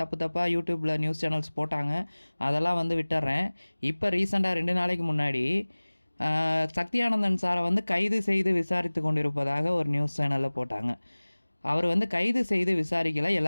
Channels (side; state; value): both; inverted; correlation -1.00